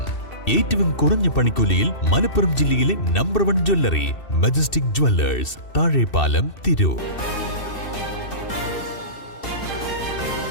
ഏറ്റവും കുറഞ്ഞ പണിക്കൂലിയിൽ മലപ്പുറം ജില്ലയിലെ number 1 jewellery majestic Jewellers, Thazhepalam, Tirur.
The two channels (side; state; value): right; late; 2.7 ms